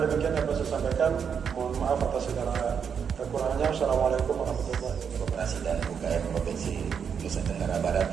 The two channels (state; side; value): quieter; left; 7.1 dB